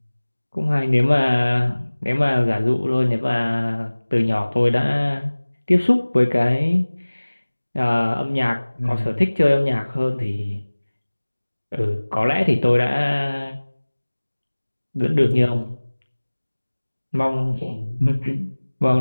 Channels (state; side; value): inverted; both; correlation -1.00